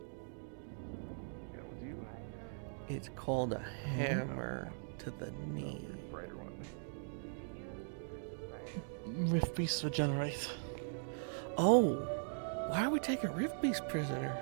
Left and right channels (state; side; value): silent; left; digital silence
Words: It's called a hammer to the knee. Rift Beasts regenerate. Oh, why are we taking Rift Beast prisoner?